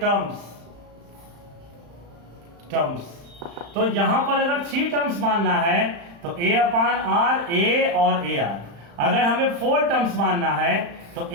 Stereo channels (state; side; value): late; left; 35 ms